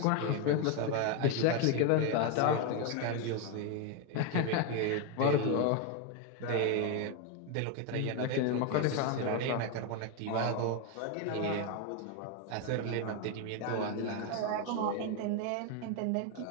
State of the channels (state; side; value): different; both; correlation 0.02